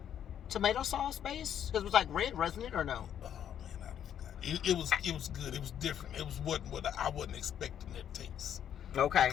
sauce base? Because it was like red, wasn't it, or no? Oh man, I forgot. It was good. It was different. It was what I wasn't expecting that taste. Okay. To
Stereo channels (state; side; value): quieter; right; 9.6 dB